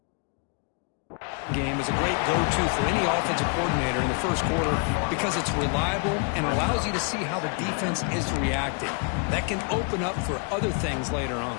Game is a great go-to for any offensive coordinator in the first quarter because it's reliable and allows you to see how the defense is reacting. That can open up for other things later on.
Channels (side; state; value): right; quieter; 37.8 dB